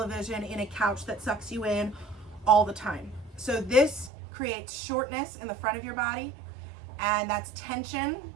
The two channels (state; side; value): drops out; left; at 4.1 s